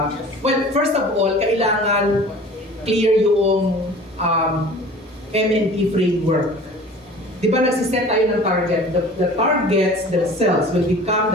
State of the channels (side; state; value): both; normal; correlation 0.43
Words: Well, first of all, kailangan clear yung M&P framework. Di ba nagsiset tayo ng target? The targets themselves will become